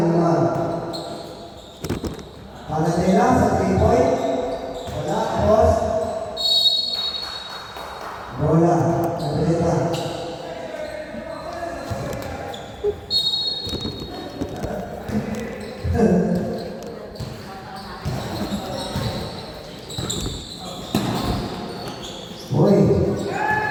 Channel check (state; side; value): identical; both; correlation 1.00